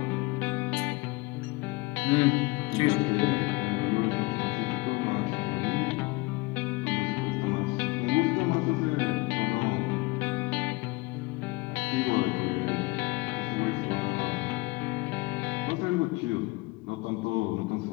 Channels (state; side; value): quieter; right; 23.7 dB